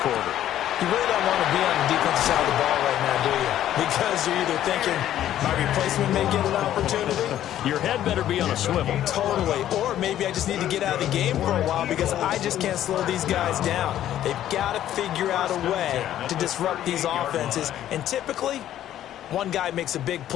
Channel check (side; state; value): right; quieter; 11.9 dB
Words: You really don't want to be on the defensive side of the ball right now, do you? Because you're either thinking, my replacement may get an opportunity. Your head better be on a swivel. Totally. Or maybe I just need to get out of the game for a while because I just can't slow these guys down. They've got to figure out a way to disrupt these offenses. And typically, one guy makes a big